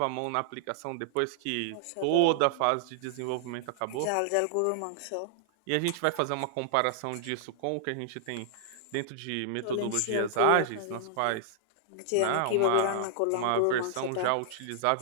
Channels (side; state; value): both; different; correlation -0.01